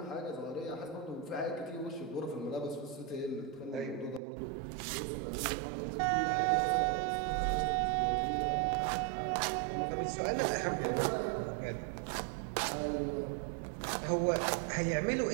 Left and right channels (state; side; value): drops out; left; at 4.2 s